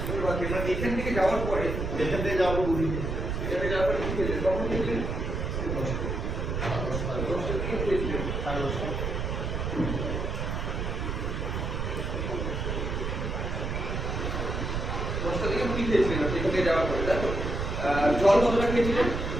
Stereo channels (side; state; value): right; noise; rumble, 2 dB below the sound